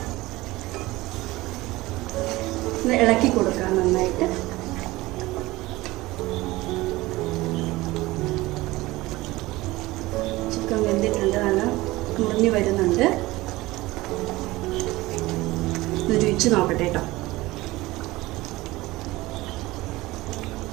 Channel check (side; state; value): left; quieter; 19.5 dB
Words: ഇളക്കി കൊടുക്കാം നന്നായിട്ട്. ചിക്കൻ വെന്തിട്ടുണ്ട്. നല്ല മുറിഞ്ഞു വരുന്നുണ്ട്. രുചിച്ച് നോക്കട്ടെ കേട്ടോ.